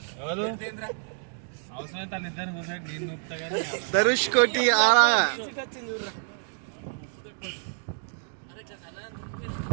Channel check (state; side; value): silent; left; digital silence